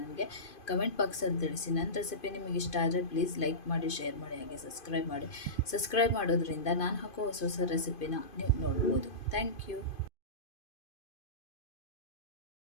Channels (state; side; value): late; right; 2.5 ms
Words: ಕಮೆಂಟ್ ಬಾಕ್ಸಲ್ಲಿ ತಿಳಿಸಿ. ನನ್ನ ರೆಸಿಪಿ ನಿಮಗೆ ಇಷ್ಟ ಆದರೆ ಪ್ಲೀಸ್ ಲೈಕ್ ಮಾಡಿ, ಶೇರ್ ಮಾಡಿ, ಹಾಗೆ ಸಬ್ಸ್ಕ್ರೈಬ್ ಮಾಡಿ. ಸಬ್ಸ್ಕ್ರೈಬ್ ಮಾಡೋದ್ರಿಂದ ನಾನು ಹಾಕೋ ಹೊಸ ಹೊಸ ರೆಸಿಪಿನ ನೀವು ನೋಡ್ಬೋದು. Thank you.